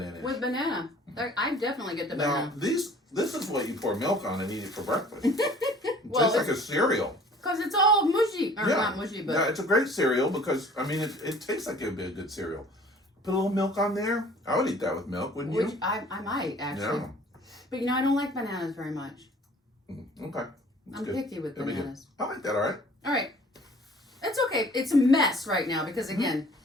With banana. I definitely get the banana. Now, this is what you pour milk on and eat it for breakfast. It Well, tastes like a cereal. Because it's all mushy. Or not mushy, but... Yeah, it's a great cereal because, I mean, it tastes like it would be a good cereal. Put a little milk on there. I would eat that with milk, wouldn't you? I might, actually. Yeah. But, I don't like bananas very much. Okay. That's I'm good. picky with That'd be good. bananas. I like that, all right. All right. It's okay. It's a mess right now because, again,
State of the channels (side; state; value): both; normal; correlation 0.51